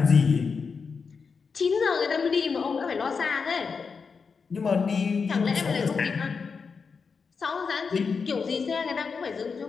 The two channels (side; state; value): right; quieter; 5.3 dB